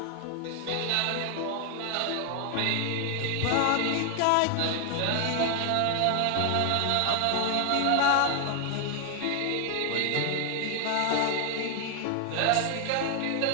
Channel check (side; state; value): both; different; correlation 0.00